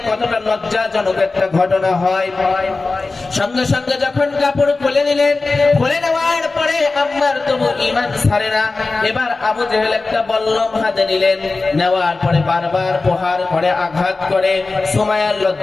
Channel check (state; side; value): quieter; right; 3.6 dB